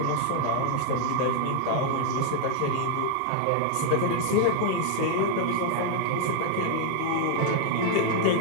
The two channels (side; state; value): both; different; correlation 0.00